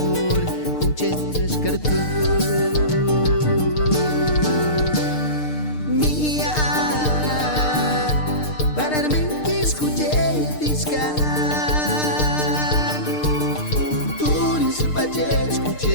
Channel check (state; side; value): late; right; 6.6 ms